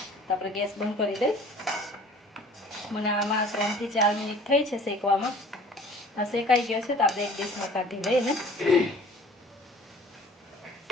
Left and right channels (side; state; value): both; normal; correlation 0.49